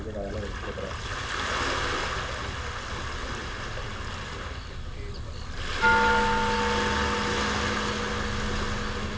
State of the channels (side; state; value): both; identical; correlation 1.00